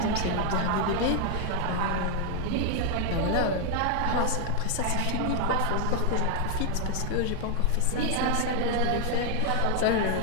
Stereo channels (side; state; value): both; different; correlation 0.00